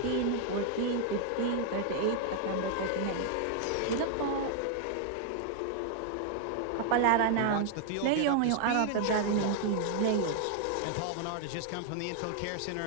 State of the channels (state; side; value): different; both; correlation 0.00